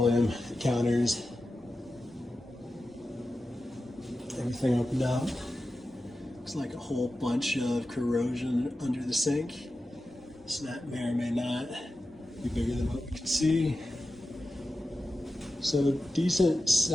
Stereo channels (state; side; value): normal; both; correlation 0.93